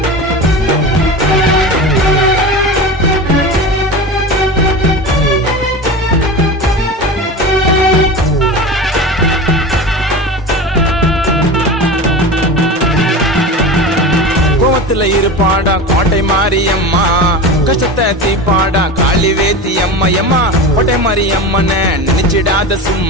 இருப்பாடா கோட்டை மாரியம்மா, கஷ்டத்தை தீப்பாடா காளி வேத்தி அம்மா அம்மா. கோட்டை மாரியம்மன நினைச்சிடாத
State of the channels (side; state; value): both; normal; correlation 0.29